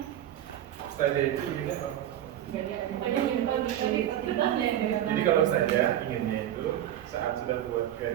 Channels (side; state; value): left; quieter; 11.7 dB